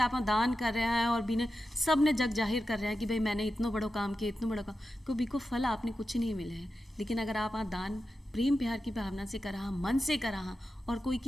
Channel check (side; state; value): both; normal; correlation 0.91